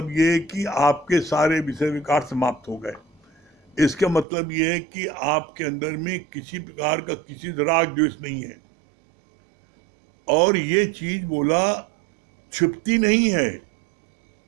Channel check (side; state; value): left; drops out; at 4.2 s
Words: ये है कि आपके सारे विषय विकार समाप्त हो गए। इसका मतलब ये है कि आपके अंदर में किसी प्रकार का किसी राग द्वेष नहीं है। और ये चीज बोला छिपती नहीं है।